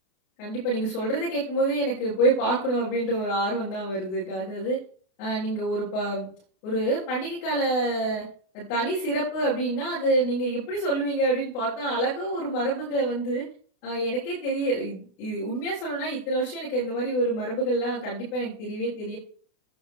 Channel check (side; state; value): right; late; 31 ms